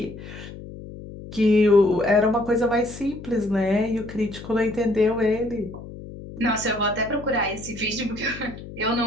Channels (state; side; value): noise; left; hum, 13 dB below the sound